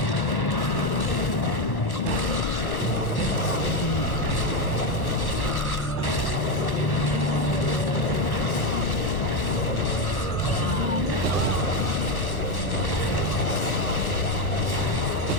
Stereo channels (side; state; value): right; late; 1.1 ms